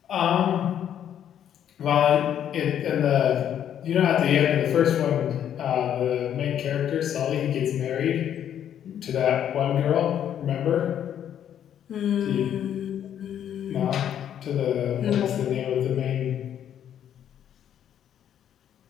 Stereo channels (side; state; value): right; quieter; 9.9 dB